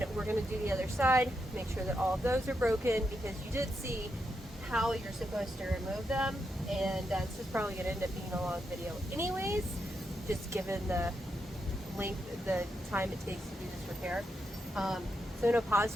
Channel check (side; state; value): both; normal; correlation 0.83